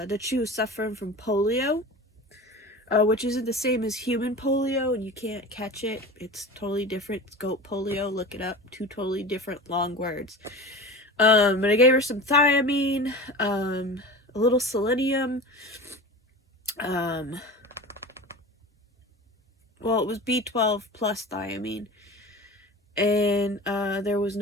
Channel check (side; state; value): both; normal; correlation 0.33